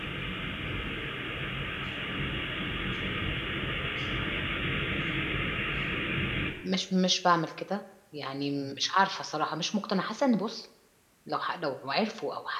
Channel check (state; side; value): identical; both; correlation 1.00